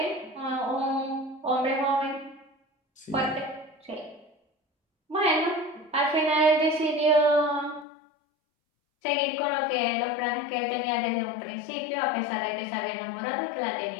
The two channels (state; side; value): drops out; right; at 7.9 s